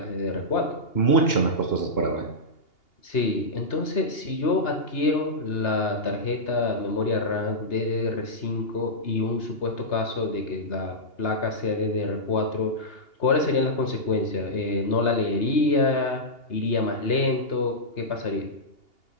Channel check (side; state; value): right; late; 2.8 ms